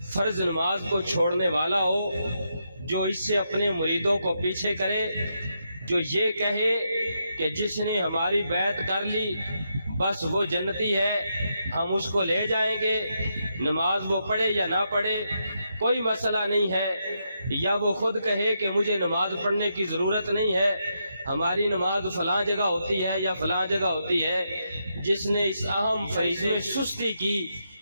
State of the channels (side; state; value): both; inverted; correlation -0.81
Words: فرض نماز کو چھوڑنے والا ہو، جو اس سے اپنے مریدوں کو پیچھے کرے، جو یہ کہے کہ جس نے ہماری بیعت کر لی بس وہ جنتی ہے، ہم اس کو لے جائیں گے، نماز وہ پڑھے یا نہ پڑھے کوئی مسئلہ نہیں ہے، یا وہ خود کہے کہ مجھے نماز پڑھنے کی ضرورت نہیں ہے، ہماری نماز فلاں جگہ ہوتی ہے یا فلاں جگہ ہوتی ہے، جس نے اس اہم فریضے میں سستی کی،